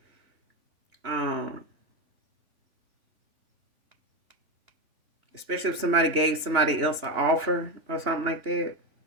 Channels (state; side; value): late; left; 3.5 ms